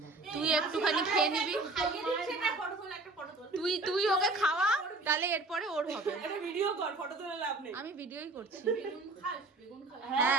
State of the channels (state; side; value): quieter; left; 3.2 dB